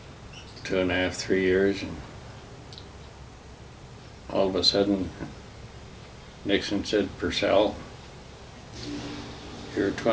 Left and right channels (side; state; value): both; identical; correlation 1.00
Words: 2.5, 3 years, and all of a sudden Nixon said, "Purcell, your